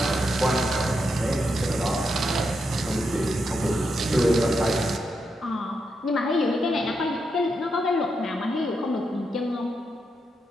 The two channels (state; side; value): normal; both; correlation 0.83